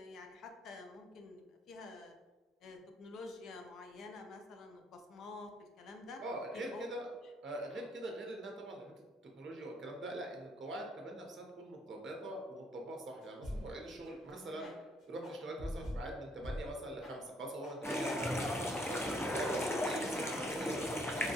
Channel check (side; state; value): both; normal; correlation 0.67